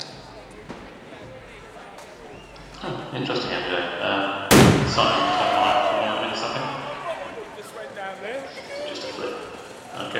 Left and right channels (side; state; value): both; identical; correlation 1.00